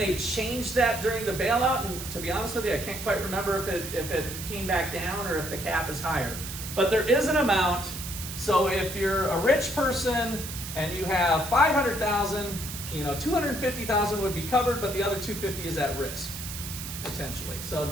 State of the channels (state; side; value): noise; right; hiss, 8 dB below the sound